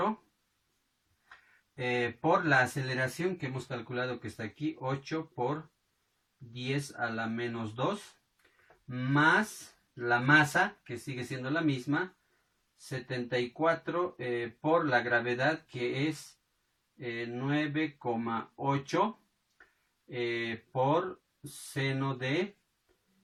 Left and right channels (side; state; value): both; identical; correlation 1.00